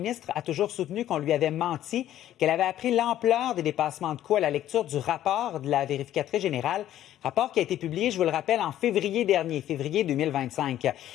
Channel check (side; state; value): right; quieter; 12.4 dB